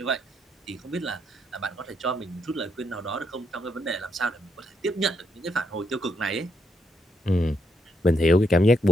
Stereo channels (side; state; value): both; normal; correlation 0.77